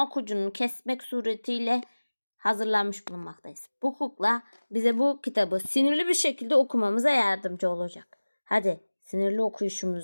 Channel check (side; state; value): both; inverted; correlation -1.00